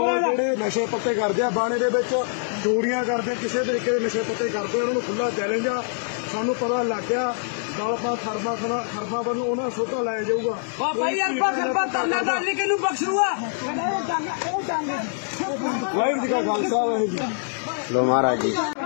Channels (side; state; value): right; silent; digital silence